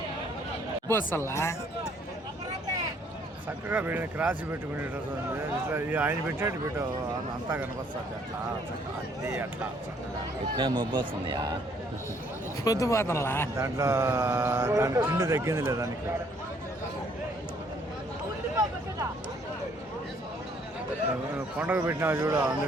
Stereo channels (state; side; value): normal; both; correlation 0.64